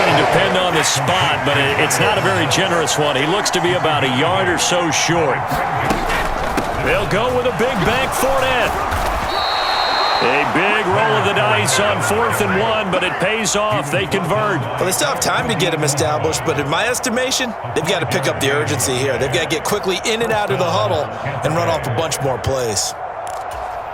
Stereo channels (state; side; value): identical; both; correlation 1.00